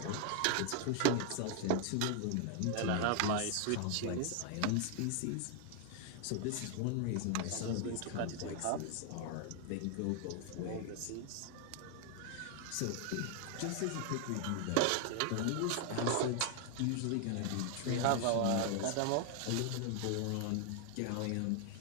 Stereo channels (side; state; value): both; different; correlation 0.00